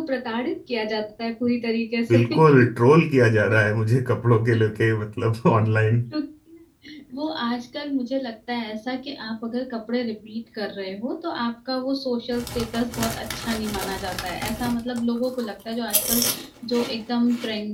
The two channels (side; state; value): both; identical; correlation 1.00